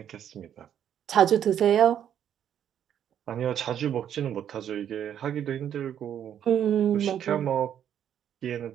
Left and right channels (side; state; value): left; quieter; 9.7 dB